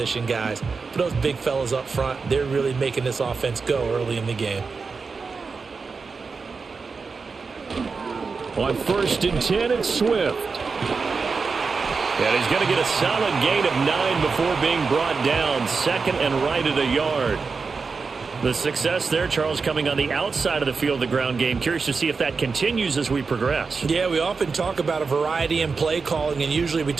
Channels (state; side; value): quieter; left; 4.7 dB